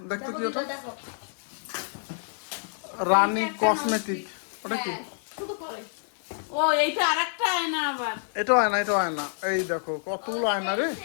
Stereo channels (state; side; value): silent; right; digital silence